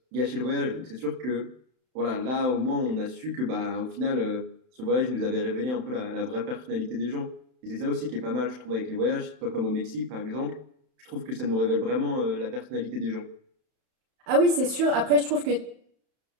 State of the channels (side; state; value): left; late; 31 ms